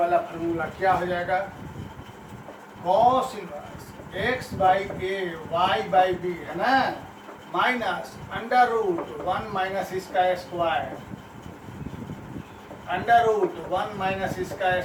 फार्मूला, क्या हो जाएगा, cos inverse x by a y by b है ना, माइनस अंडर रूट 1 माइनस इसका स्क्वायर, अंडर रूट 1 माइनस इसका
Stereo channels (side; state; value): both; identical; correlation 1.00